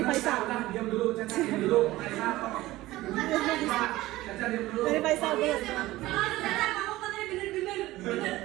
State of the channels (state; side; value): quieter; left; 17.4 dB